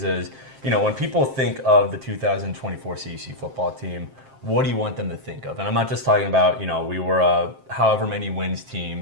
is, when people think of the 2024 CUC football team, what do you want them to think of? And I'm not just talking about, we were a however many wins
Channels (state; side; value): late; left; 7.6 ms